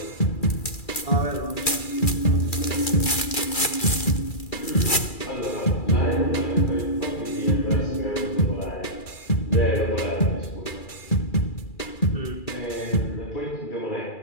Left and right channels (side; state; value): right; late; 2.3 ms